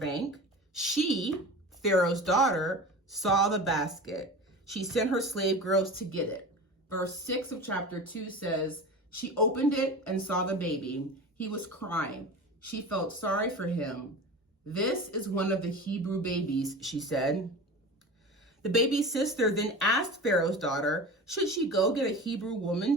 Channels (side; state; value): both; normal; correlation 0.32